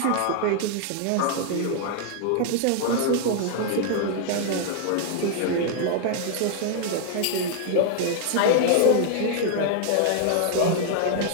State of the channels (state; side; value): different; both; correlation 0.00